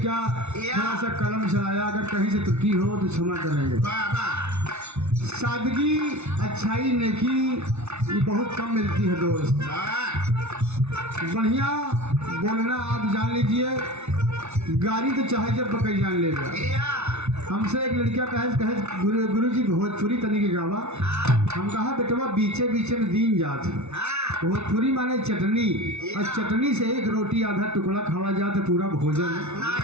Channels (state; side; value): late; left; 0.81 ms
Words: थोड़ा सा कलम चलाया, अगर कहीं से त्रुटि हो तो क्षमा करेंगे। सादगी अच्छाई नेकी ये बहुत कम मिलती है दोस्त। बढ़िया बोलना आप जान लीजिए, गाड़ी तो चाहे जब पकड़ जान लेगा। हमसे एक लड़का कहे गुरु जी भोजपुरी तनी के गावा, हम कहा बेटवा बीचे बीचे में दीन जात। भोजपुरी माने चटनी, और चटनी से एक रोटी आधा टुकड़ा खावा जाए तो पूरा भोजन